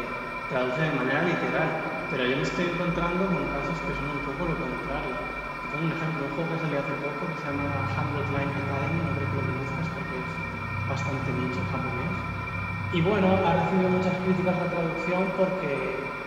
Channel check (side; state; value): both; identical; correlation 1.00